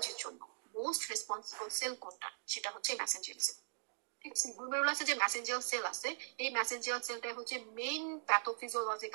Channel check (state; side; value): silent; left; digital silence